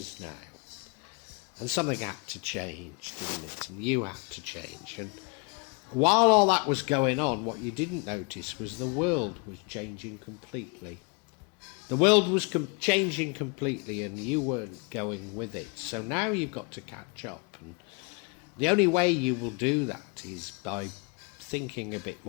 now, and something had to change, didn't it? And you had to change. And while all that was going on, what you didn't notice was the world was changing completely. The world was changing completely and you weren't going with it. So now you've got to catch up. And the only way you will do that is by thinking a bit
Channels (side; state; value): right; quieter; 33.0 dB